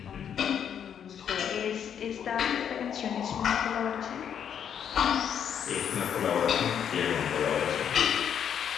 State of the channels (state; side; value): quieter; right; 8.6 dB